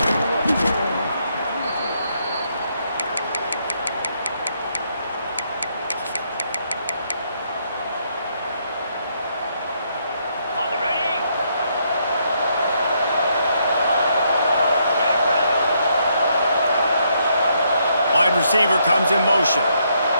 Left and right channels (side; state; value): both; inverted; correlation -0.74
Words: Wide receiver comes in motion.